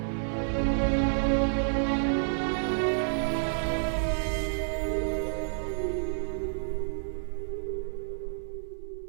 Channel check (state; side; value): silent; left; digital silence